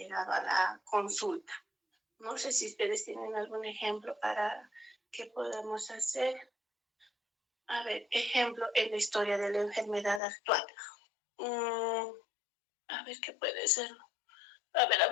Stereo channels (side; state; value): right; drops out; at 10.2 s